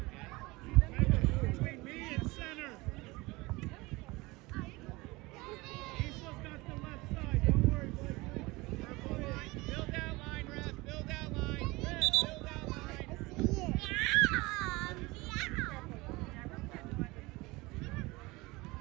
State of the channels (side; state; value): left; quieter; 22.5 dB